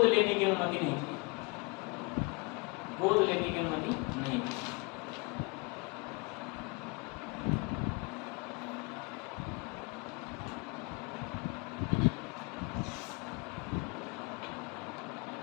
लेने की अनुमति नहीं थी, गोद लेने की अनुमति नहीं थी।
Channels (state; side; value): quieter; right; 28.9 dB